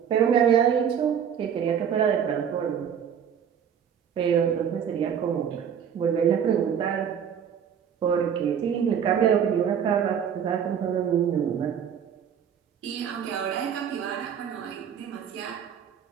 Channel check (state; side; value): quieter; left; 8.3 dB